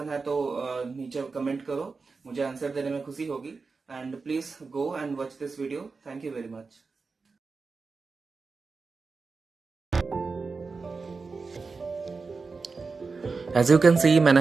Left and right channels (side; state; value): left; quieter; 4.4 dB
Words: है तो नीचे कमेंट करो, मुझे आंसर देने में खुशी होगी। And please go and watch this video. Thank you very much. As you can see,